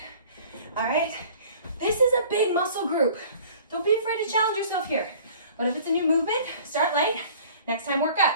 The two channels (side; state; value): both; inverted; correlation -0.49